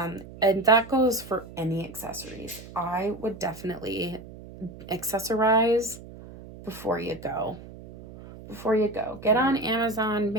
that goes for any accessories. I would definitely accessorize before you go. Get on Amazon,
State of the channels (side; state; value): right; noise; hum, 16 dB below the sound